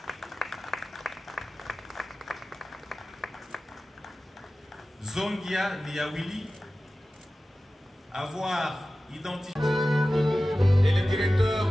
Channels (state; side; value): normal; both; correlation 0.96